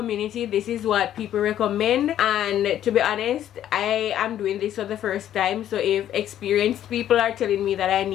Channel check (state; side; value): quieter; right; 11.3 dB